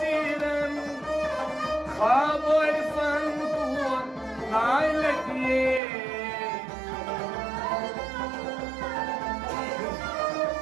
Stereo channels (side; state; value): left; drops out; at 5.8 s